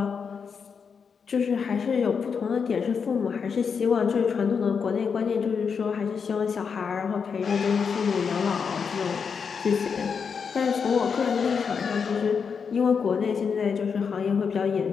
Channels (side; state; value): right; quieter; 6.1 dB